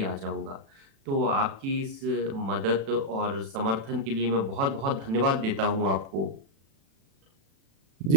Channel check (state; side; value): late; left; 36 ms